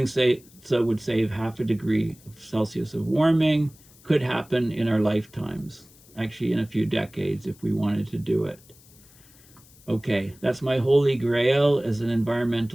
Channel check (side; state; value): left; noise; hiss, 26 dB below the sound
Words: so would save 0.5 degree Celsius of warming, could happen in our lifetimes, actually in a few decades if we wanted to do it. Okay, that's my holy grail as an